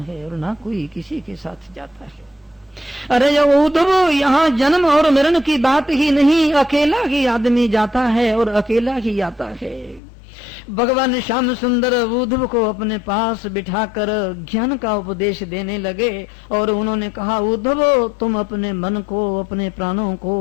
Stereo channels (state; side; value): drops out; right; at 10.0 s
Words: और ना कोई किसी के साथ जाता है। अरे उद्धव, यहाँ जन्म और मरण की बात ही नहीं, अकेला ही आदमी जाता है और अकेला ही आता है। भगवान श्याम सुंदर उद्धव को अपने पास बिठाकर ज्ञान का उपदेश देने लगे और उन्होंने कहा, उद्धव तुम अपने मन को, अपने प्राणों